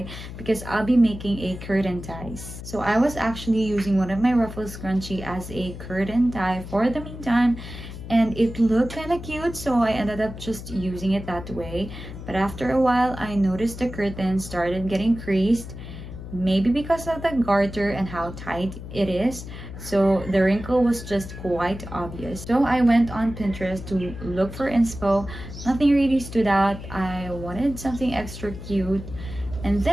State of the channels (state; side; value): noise; left; hum, 11 dB below the sound